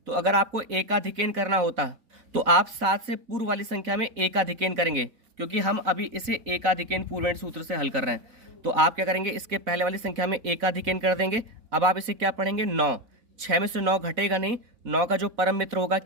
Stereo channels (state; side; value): late; left; 4.1 ms